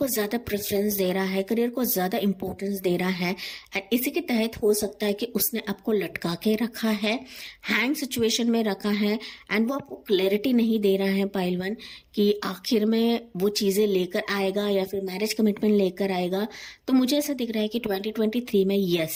को ज़्यादा इंपॉर्टेंस दे रहा है। एंड इसी के तहत हो सकता है कि उसने आपको लटका के रखा है, हैंग सिचुएशन में रखा है, एंड वो आपको क्लैरिटी नहीं दे रहा है पाइल वन कि आखिर में वो चीज़ें लेकर आएगा या फिर मैरिज कमिटमेंट लेकर आएगा। तो मुझे ऐसा दिख रहा है कि 2023 में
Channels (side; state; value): both; identical; correlation 1.00